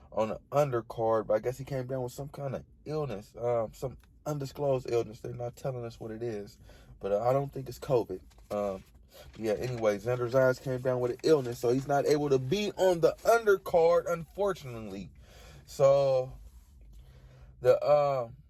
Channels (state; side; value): identical; both; correlation 1.00